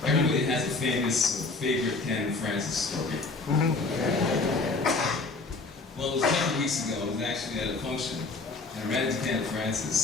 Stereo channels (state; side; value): quieter; right; 3.7 dB